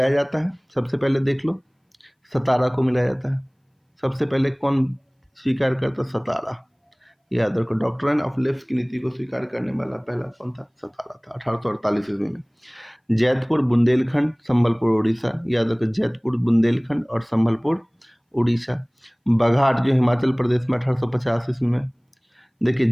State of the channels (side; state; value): both; identical; correlation 1.00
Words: जाता है। सबसे पहले देख लो, सतारा को मिलाया जाता है। सबसे पहले कौन स्वीकार करता? सतारा। याद रखो, डॉक्ट्राइन ऑफ लेप्स की नीति को स्वीकार करने वाला पहला कौन था? सतारा था 1848 ईस्वी में। जैतपुर, बुंदेलखंड, संबलपुर, उड़ीसा। याद रखो, जैतपुर, बुंदेलखंड और संबलपुर, उड़ीसा। बघाट जो हिमाचल प्रदेश में 1850 ईस्वी में। देखिए